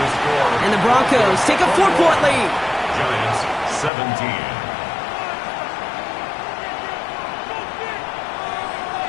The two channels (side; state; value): right; drops out; at 3.9 s